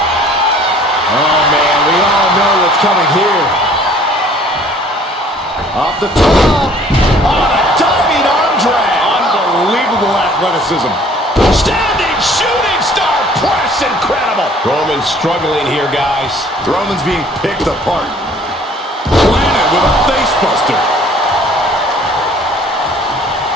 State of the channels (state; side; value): normal; both; correlation 0.55